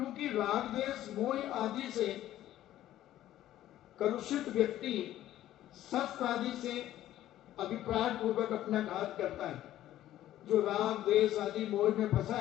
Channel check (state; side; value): quieter; right; 13.3 dB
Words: राग द्वेष मोह आदि से कलुषित व्यक्ति शस्त्र आदि से अभिप्राय पूर्वक अपना घात करता है। जो राग द्वेष आदि मोह में फंसा